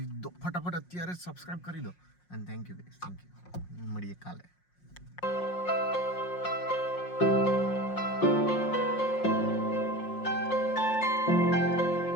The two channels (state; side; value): late; right; 5.6 ms